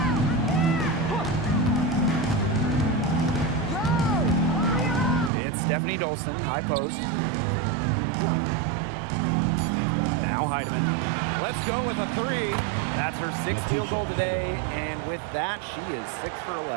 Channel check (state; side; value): drops out; left; at 5.3 s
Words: It's Stephanie Dolson, high post. Now Heidemann. Let's go with a 3. That's her 6th field goal today, and with that, she is 6 for